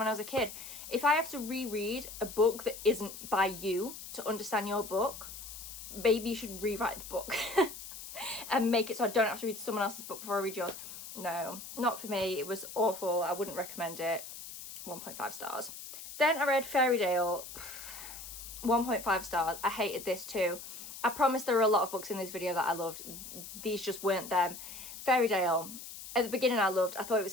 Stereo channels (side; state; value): left; noise; hiss, 12 dB below the sound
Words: I was a kid. If I have to reread a book that isn't by you to understand your book, maybe you should rewrite the book and make it so I don't have to read someone else's book before I read yours. No, not for me. It was awful. I wouldn't recommend it. 1.5 stars. Then I read Fairytale. 1.5 stars. I hated this too. I promise there are a lot of books in this video that I loved. These just weren't them. Fairytale. At the beginning I loved. I thought it